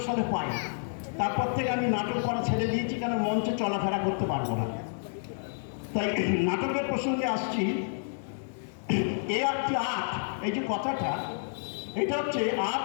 সালে পায়ে। তারপর থেকে আমি নাটক করা ছেড়ে দিয়েছি, কেন মঞ্চে চলাফেরা করতে পারবো না। তাই নাটকের প্রসঙ্গে আসছি। আর্ট, এই যে কথাটা, এটা হচ্ছে আর্ট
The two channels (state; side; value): silent; right; digital silence